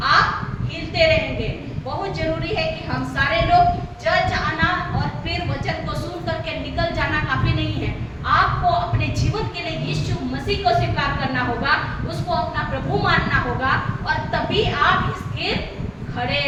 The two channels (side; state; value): both; identical; correlation 1.00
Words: आप हिलते रहेंगे। बहुत जरूरी है कि हम सारे लोग चर्च आना और फिर वचन को सुन करके निकल जाना काफी नहीं है। आपको अपने जीवन के लिए यीशु मसीह को स्वीकार करना होगा, उसको अपना प्रभु मानना होगा, और तभी आप स्थिर खड़े